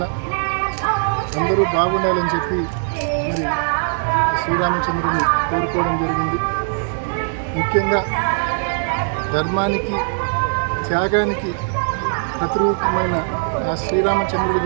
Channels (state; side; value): silent; left; digital silence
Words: అందరూ బాగుండాలని చెప్పి మరి శ్రీరామచంద్రుని కోరుకోవడం జరిగింది. ముఖ్యంగా ధర్మానికి, త్యాగానికి ప్రతిరూపమైన ఆ శ్రీరామచంద్రుడి